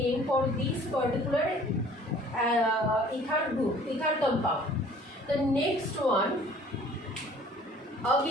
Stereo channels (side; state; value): both; normal; correlation 0.52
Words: for this particular ether group, ether compound. The next one,